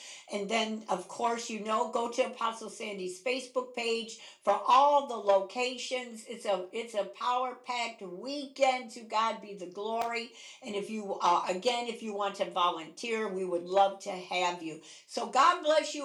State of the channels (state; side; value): identical; both; correlation 1.00